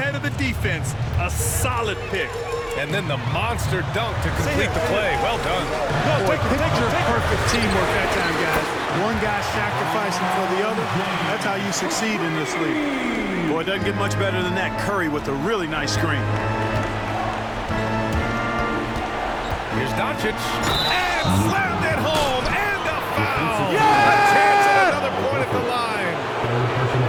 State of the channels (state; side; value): identical; both; correlation 1.00